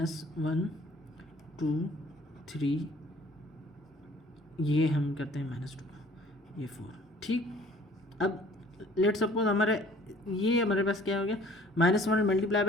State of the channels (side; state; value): both; normal; correlation 0.54